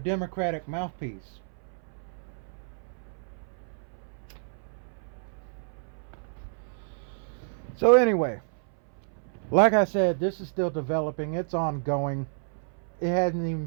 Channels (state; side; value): silent; left; 57 dB below the other